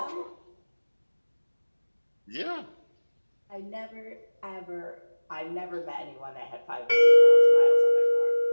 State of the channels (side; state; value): both; inverted; correlation -1.00